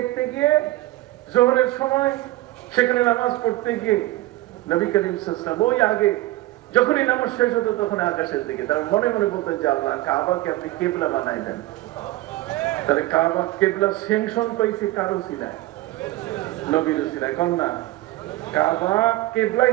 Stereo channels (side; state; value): left; quieter; 17.4 dB